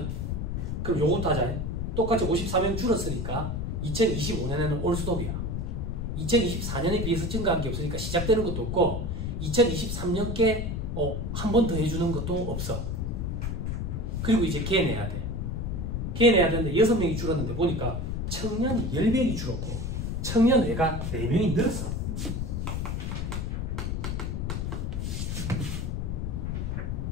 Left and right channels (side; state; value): left; noise; rumble, 2 dB below the sound